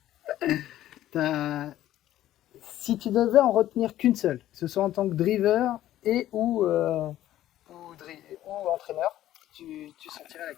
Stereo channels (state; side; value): quieter; right; 13.4 dB